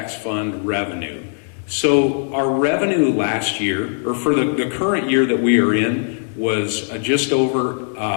fund revenue. So our revenue last year, or for the current year that we are in, was just over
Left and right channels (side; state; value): right; silent; digital silence